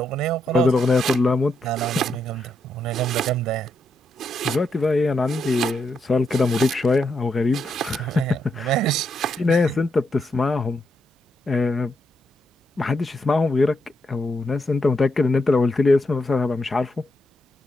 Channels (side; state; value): both; normal; correlation 0.80